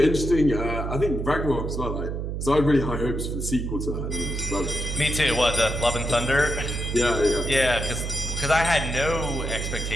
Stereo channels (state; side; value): noise; right; hum, 3 dB below the sound